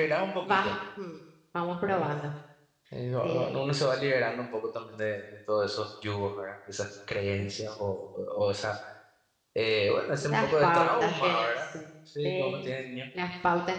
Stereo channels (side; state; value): both; identical; correlation 1.00